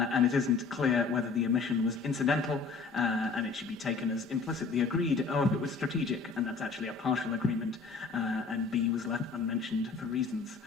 it isn't clear whether the omission was incidental, and it should be taken as implicitly agreed, or if it was strategic, and that's actually a partial agreement, and B was left unmentioned for reasons.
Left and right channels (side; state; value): right; quieter; 4.7 dB